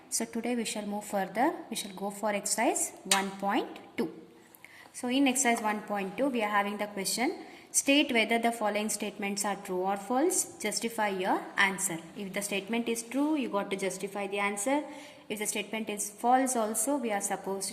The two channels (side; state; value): both; identical; correlation 1.00